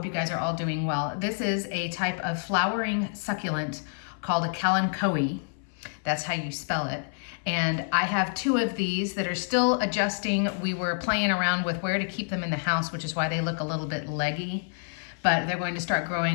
you guys are all doing well. This is a type of flowering succulent called a Kalanchoe. That's how you spell it. And I have two of these that are still adjusting. We were playing around with where to keep them in the house, which is why they look a little bit leggy, but they're going to start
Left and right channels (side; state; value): right; silent; 59 dB below the other